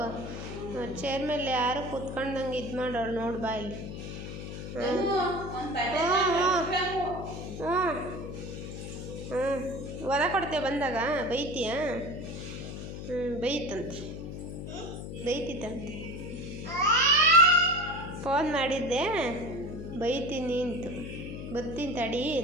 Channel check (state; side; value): noise; left; hum, 8 dB below the sound